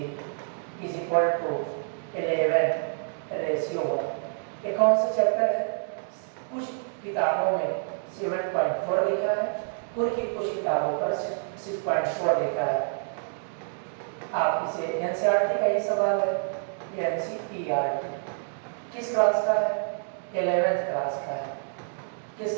इज इक्वल टू 11:1। ये कौन सा चैप्टर है? कुछ किताबों में 7.4 लिखा है, कुछ किताबों पर 6.4 लिखा है। आप इसे एनसीईआरटी का ही सवाल है, ये एनसीईआरटी किस क्लास का है? 11th क्लास का है। किस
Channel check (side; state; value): left; silent; digital silence